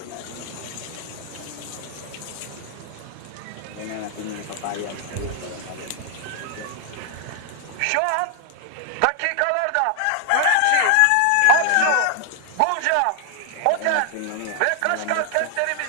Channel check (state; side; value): different; both; correlation 0.00